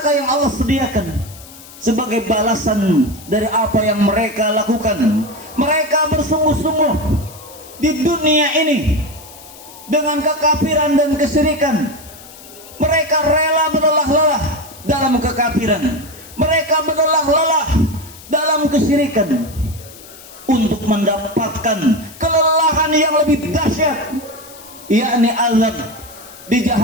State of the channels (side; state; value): left; noise; hiss, 19 dB below the sound